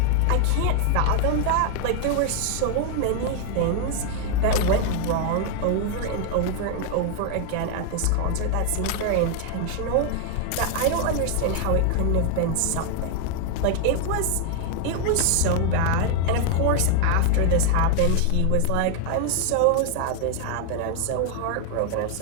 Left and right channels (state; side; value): different; both; correlation 0.00